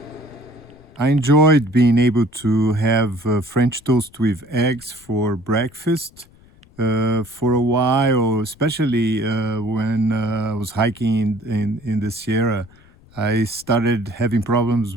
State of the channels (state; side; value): noise; left; rumble, 27 dB below the sound